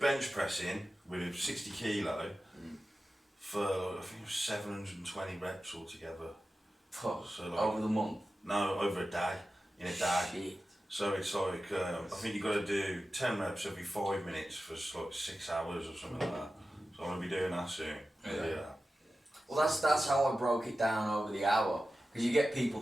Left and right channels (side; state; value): both; normal; correlation 0.94